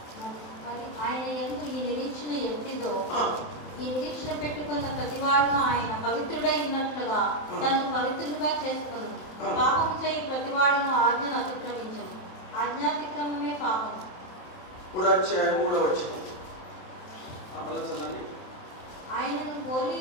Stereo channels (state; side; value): late; right; 27 ms